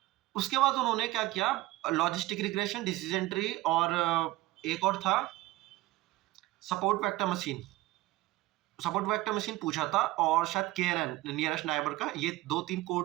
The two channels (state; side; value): quieter; left; 18.3 dB